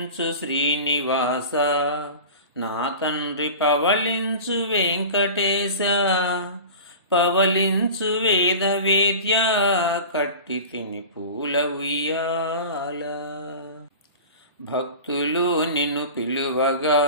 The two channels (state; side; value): inverted; both; correlation -0.35